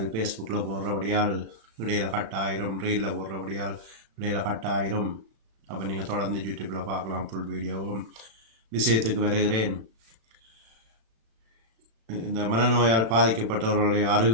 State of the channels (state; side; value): late; left; 35 ms